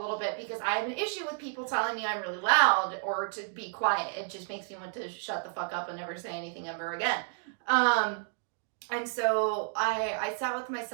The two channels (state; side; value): silent; left; 57 dB below the other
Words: bit because I have an issue with people telling me I'm really loud or to be quiet. It just makes me want to shut the fuck up and never say anything ever again. And so I sat with